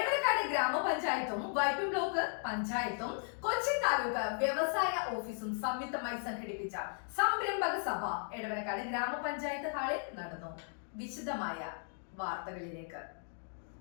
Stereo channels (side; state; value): right; silent; 54 dB below the other